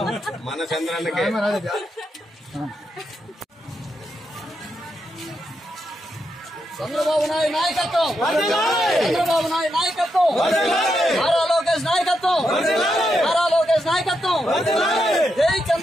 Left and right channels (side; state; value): both; normal; correlation 0.83